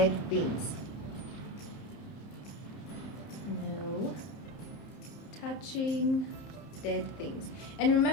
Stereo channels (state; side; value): late; right; 30 ms